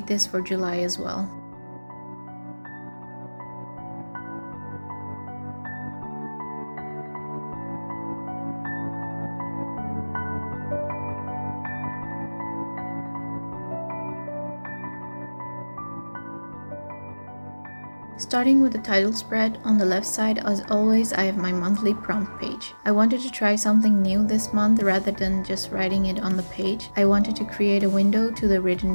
this for July as well. Starting with the title spread, on the left side, as always, I have my monthly prompt page. I wanted to try something new this month rather than just writing it on the page. I wanted to create a window to the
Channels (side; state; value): both; inverted; correlation -1.00